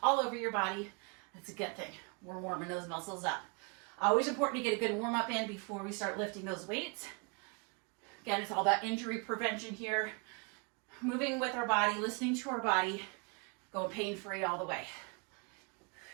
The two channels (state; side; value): quieter; left; 34.3 dB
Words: all over your body, that's a good thing. We're warming those muscles up. Always important to get a good warm up in before we start lifting those weights. Again, it's all about injury prevention here. Moving with our body, listening to our body, going pain-free all the way.